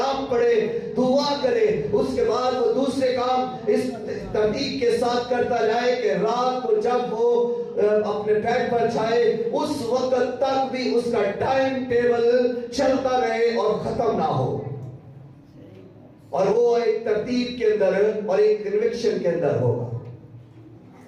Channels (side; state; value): both; identical; correlation 1.00